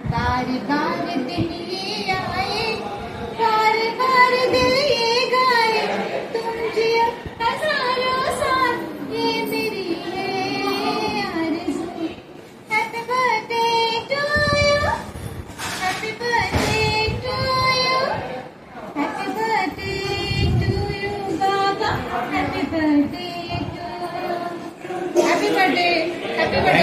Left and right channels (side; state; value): both; identical; correlation 1.00